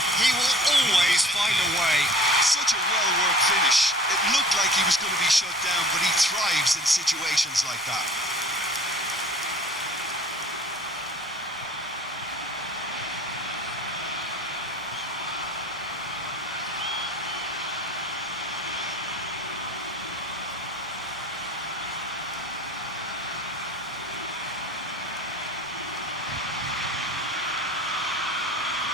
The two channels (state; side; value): normal; both; correlation 0.46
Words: he will always find a way. Such a well-worked finish. It looked like he was going to be shut down, but he thrives in situations like that.